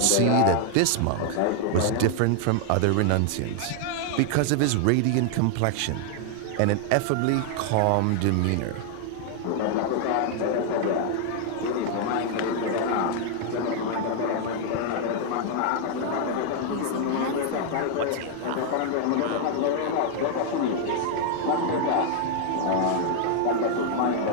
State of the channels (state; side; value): different; both; correlation 0.00